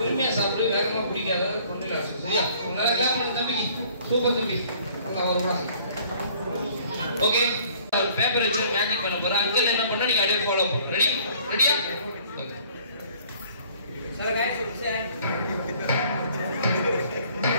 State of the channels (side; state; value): both; inverted; correlation -0.57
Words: பொறுமையா சாப்பிடு. வேகமா குடிக்காத. கொண்டு சரியா? நல்லா கிளாப் பண்ண தம்பிக்கு. சூப்பர் தம்பி. ஓகே பேப்பர் வச்சு மேஜிக் பண்ண போறேன். அங்கிள் என்ன பண்ணா நீங்க அப்படியே ஃபாலோ பண்ணுங்க. ரெடி? ரெடியா? Hello guys, say hi.